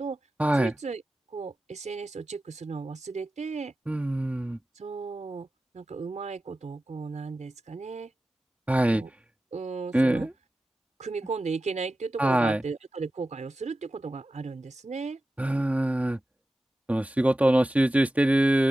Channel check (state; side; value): normal; both; correlation 0.93